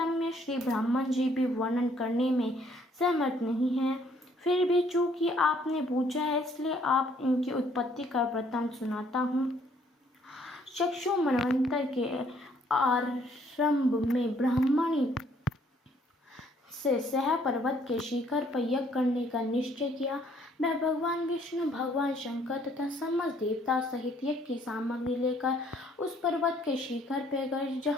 श्री ब्राह्मण जी भी वर्णन करने में सहमत नहीं है। फिर भी चूंकि आपने पूछा है इसलिए आप इनकी उत्पत्ति का वृत्तांत सुनाता हूँ। चक्षु मनवंतर के आरंभ में ब्राह्मणी से सह पर्वत के शिखर पर यज्ञ करने का निश्चय किया। वह भगवान विष्णु, भगवान शंकर तथा समस्त देवता सहित यज्ञ की सामग्री लेकर उस पर्वत के शिखर पर गए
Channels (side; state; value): both; normal; correlation 0.64